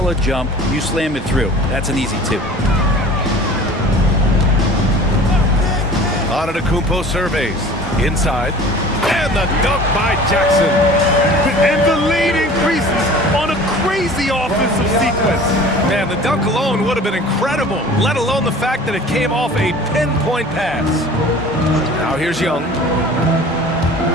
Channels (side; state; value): both; normal; correlation 0.44